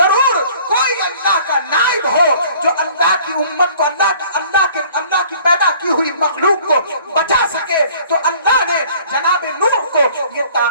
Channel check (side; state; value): both; inverted; correlation -0.53